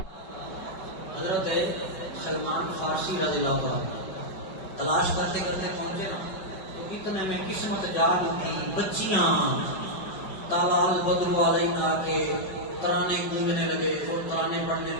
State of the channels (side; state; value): right; late; 5.2 ms